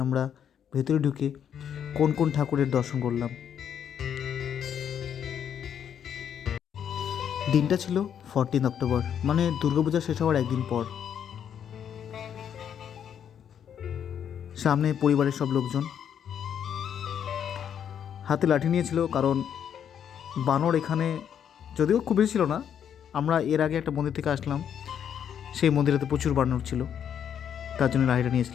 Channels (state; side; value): quieter; right; 8.7 dB